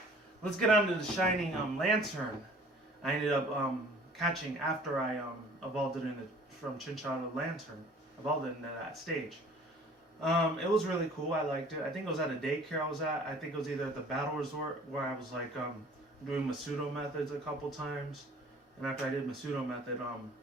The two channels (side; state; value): both; normal; correlation 0.50